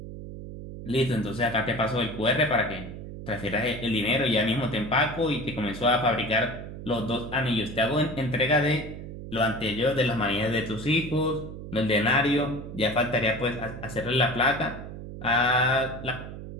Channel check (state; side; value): noise; right; hum, 10 dB below the sound